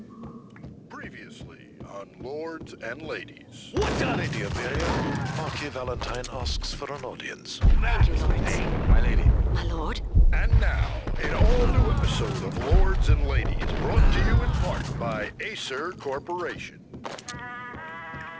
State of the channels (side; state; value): both; identical; correlation 1.00